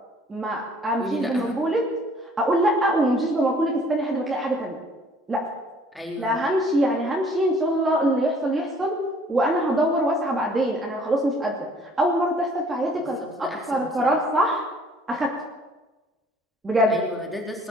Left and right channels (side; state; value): both; normal; correlation 0.57